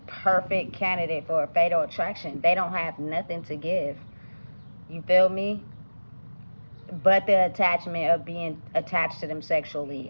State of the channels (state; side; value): inverted; both; correlation -1.00